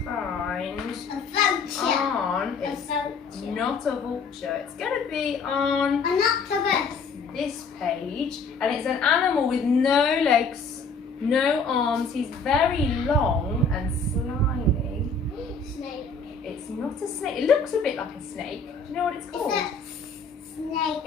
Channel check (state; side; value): quieter; right; 4.4 dB